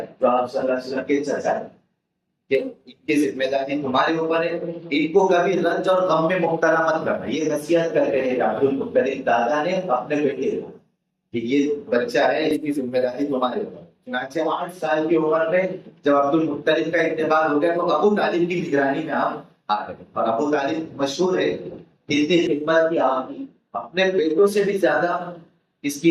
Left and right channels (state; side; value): identical; both; correlation 1.00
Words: جو آپ صلی اللہ علیہ وسلم کے چچا ہیں، کہ ان کی ذمہ داری تمہارے اوپر ہے، ان کو کبھی رنج اور غم میں مبتلا مت کرنا۔ یہ نصیحت کر رہے ہیں عبد المطلب دادا نے اپنے بیٹے کو کہ یہ بچہ ہے، اس کی ذمہ داری تمہارے اوپر۔ چنانچہ 8 سال کی عمر میں جب عبد المطلب کا انتقال ہو گیا تو ابو طالب کی نگرانی میں آپ آ گئے، اور ابو طالب مشہور ہے اتنی خدمت کی، آپ اپنے بیٹوں سے بھی زیادہ اس